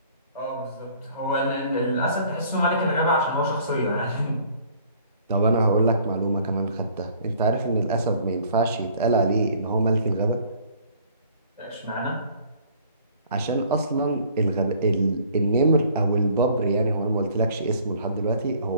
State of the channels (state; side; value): inverted; both; correlation -0.56